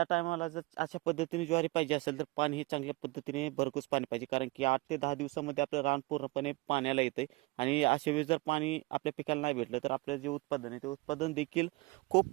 टायमाला जर अशा पद्धतीने ज्वारी पाहिजे असेल तर पाणी हे चांगल्या पद्धतीने भरघोस पाणी पाहिजे, कारण की 8 ते 10 दिवसामध्ये आपलं रान पूर्णपणे पाण्याला येतं आणि अशा वेळेस जर पाणी आपल्या पिकाला नाही भेटलं तर आपलं जे उत्पादन आहे ते उत्पादन देखील खूप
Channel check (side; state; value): left; quieter; 23.3 dB